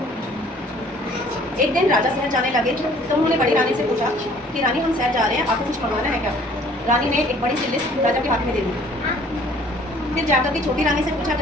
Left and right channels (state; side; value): normal; both; correlation 0.55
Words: एक दिन राजा शहर जाने लगे तो उन्होंने बड़ी रानी से पूछा कि रानी हम शहर जा रहे हैं, आपको कुछ मंगवाना है क्या? रानी ने एक बड़ी सी लिस्ट राजा के हाथ में दे दी। फिर जाकर के छोटी रानी से पूछा